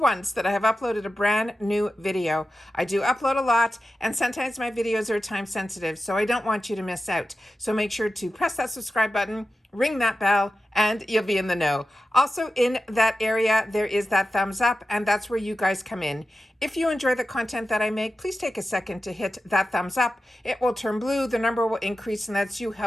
that I have uploaded a brand new video. I do upload a lot, and sometimes my videos are time sensitive, so I don't want you to miss out. So make sure to press that subscribe button, ring that bell, and you'll be in the know. Also in that area, there is that thumbs up, and that's where you guys come in. If you enjoy the content that I make, please take a second to hit that thumbs up. It will turn blue, the number will increase, and that's you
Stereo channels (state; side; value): normal; both; correlation 0.92